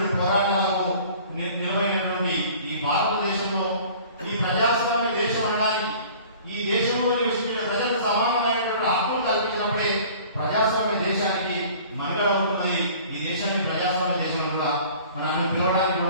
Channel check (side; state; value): both; inverted; correlation -0.47